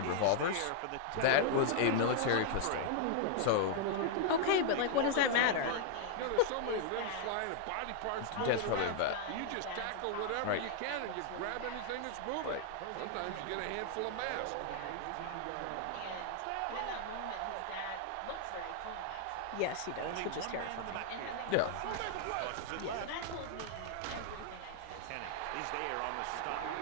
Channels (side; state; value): both; different; correlation 0.00